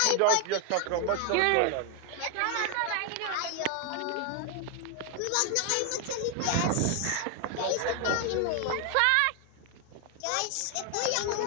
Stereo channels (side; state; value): both; different; correlation 0.01